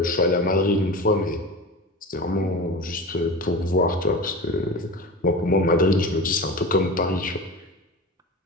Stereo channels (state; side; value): normal; both; correlation 0.30